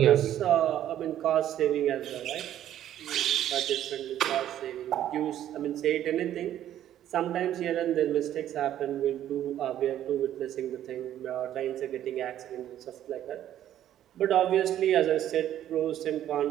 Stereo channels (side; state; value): left; quieter; 11.7 dB